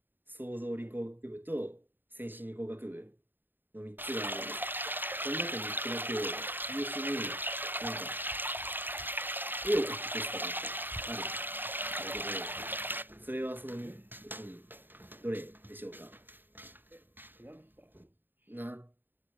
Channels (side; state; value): left; late; 0.094 ms